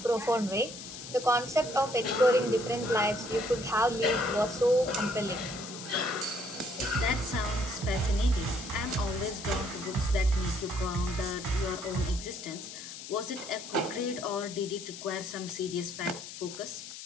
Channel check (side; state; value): left; noise; hiss, 11 dB below the sound